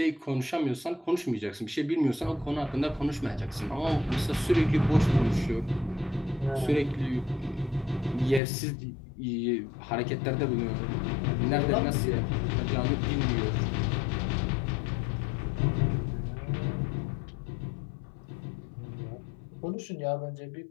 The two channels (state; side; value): drops out; right; at 8.4 s